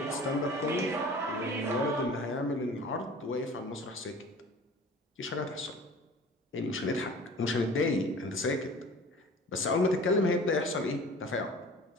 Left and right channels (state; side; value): normal; both; correlation 0.43